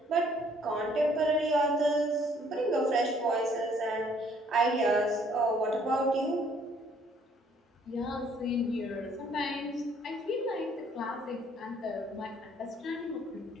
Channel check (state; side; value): normal; both; correlation 0.62